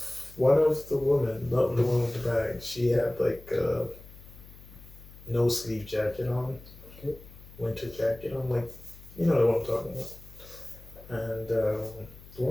one of the women, not the one with the bag, she had like a no sleeve jacket on, winter jacket on, like you know what I'm talking about. And the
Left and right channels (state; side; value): noise; left; hum, 19 dB below the sound